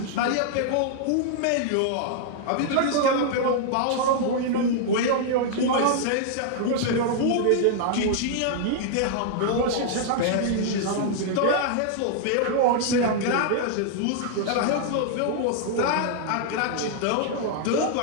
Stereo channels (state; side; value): different; both; correlation -0.01